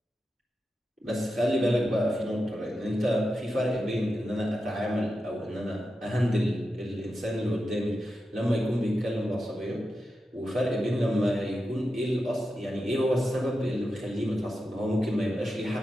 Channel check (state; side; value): normal; both; correlation 0.89